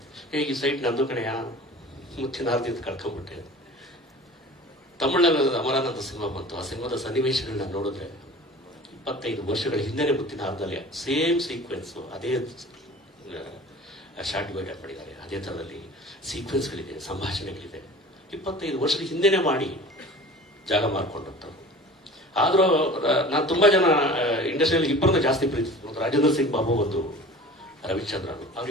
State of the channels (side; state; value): both; normal; correlation 0.41